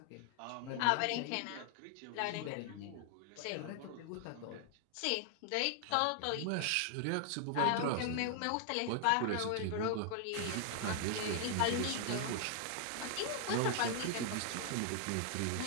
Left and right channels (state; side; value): different; both; correlation 0.00